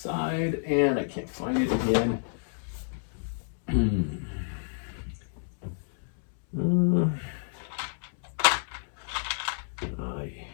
and I can't find it again.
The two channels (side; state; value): right; silent; digital silence